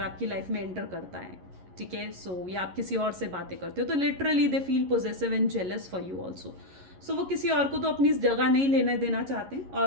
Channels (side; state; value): left; late; 11 ms